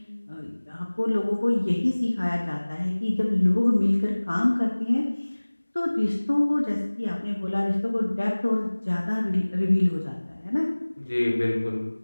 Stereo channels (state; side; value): inverted; both; correlation -1.00